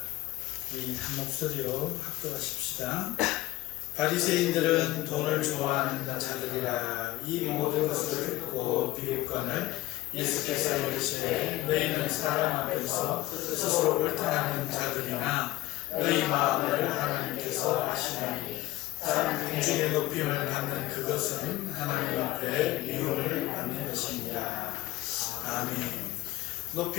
한 목소리로 합독하십시다. 바리새인들은 돈을 좋아하는 자들이라 이 모든 것을 듣고 비웃거늘 예수께서 이르시되 너희는 사람 앞에서 스스로 옳다는 자들이나 너희 마음을 하나님께서 아시나니 사람 공중의 높임을 받는 그것은 하나님 앞에 미움을 받는 것입니다. 아멘.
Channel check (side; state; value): right; quieter; 17.0 dB